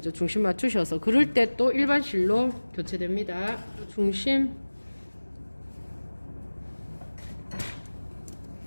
중심 맞추셔서. 그럴 때 또 일반 실로 교체됩니다. 중심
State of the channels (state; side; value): inverted; both; correlation -1.00